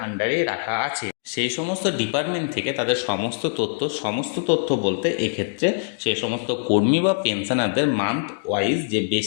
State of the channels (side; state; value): right; silent; digital silence